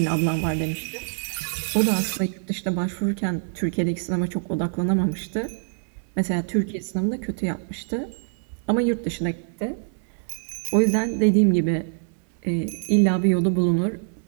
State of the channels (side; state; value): left; silent; 62 dB below the other